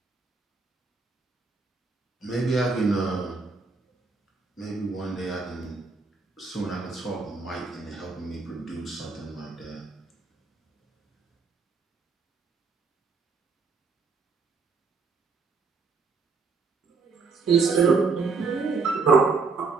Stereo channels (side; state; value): left; quieter; 4.4 dB